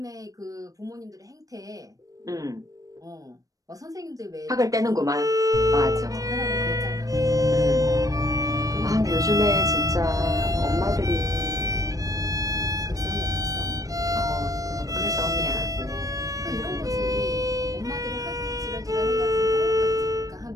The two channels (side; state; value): left; late; 0.17 ms